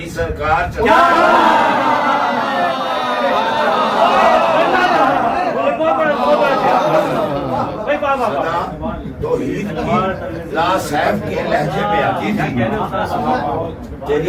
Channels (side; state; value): both; identical; correlation 1.00